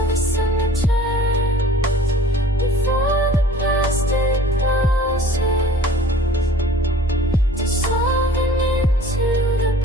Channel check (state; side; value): normal; both; correlation 0.48